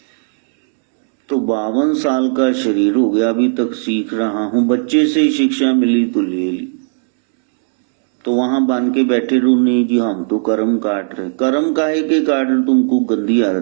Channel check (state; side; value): silent; left; digital silence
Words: तो 52 साल का शरीर हो गया, अभी तक सीख रहा हूं, बच्चे से ही शिक्षा मिली तो ले ली, तो वहां बांध के बैठे रहो, नहीं जी हम तो कर्म काट रहे। कर्म काहे के काट रहे? तुमको गंदी